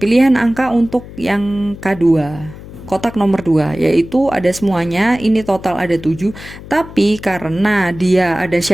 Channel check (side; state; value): left; noise; hum, 15 dB below the sound